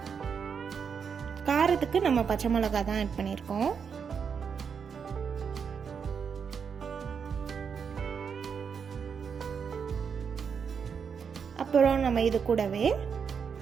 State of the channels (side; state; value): left; quieter; 6.6 dB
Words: காரத்துக்கு நம்ம பச்சை மிளகா தான் ஆட் பண்ணியிருக்கோம். அப்புறம் நம்ம இது கூடவே